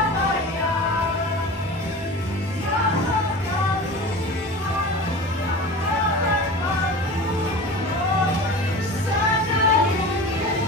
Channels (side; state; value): both; normal; correlation 0.34